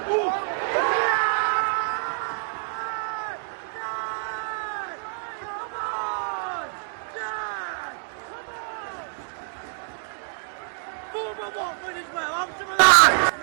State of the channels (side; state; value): left; silent; digital silence